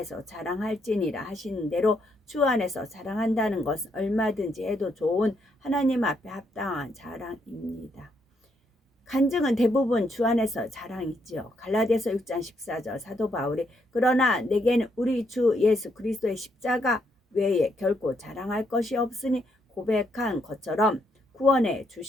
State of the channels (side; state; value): both; normal; correlation 0.75